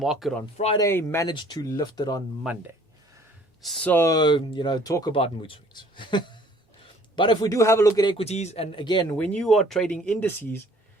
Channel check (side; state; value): both; normal; correlation 0.56